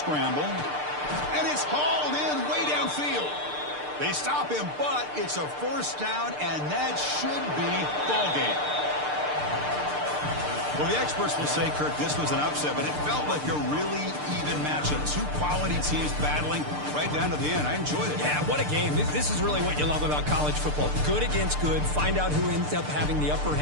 And it's hauled in way downfield. They stop him, but it's a first down, and that should be ball game. Well, the experts will say, Kirk, this was an upset, but it felt like a really even matchup. Two quality teams battling right down to the end. I enjoyed it. Yeah, what a game. This is really what you love about college football. Good against good. Find out who ends up having the upper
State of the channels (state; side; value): late; left; 6.7 ms